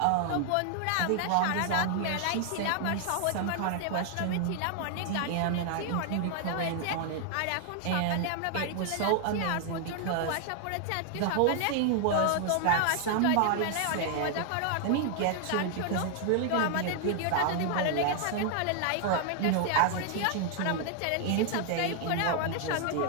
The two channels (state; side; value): different; both; correlation 0.00